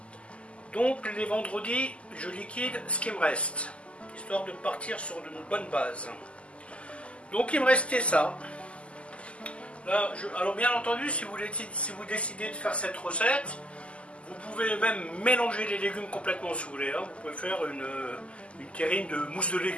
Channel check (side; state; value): right; late; 0.057 ms